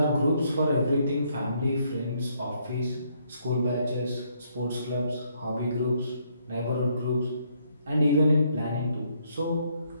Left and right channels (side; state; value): both; inverted; correlation -0.71